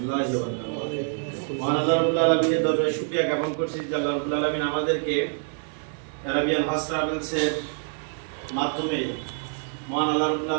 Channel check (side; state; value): left; silent; 58 dB below the other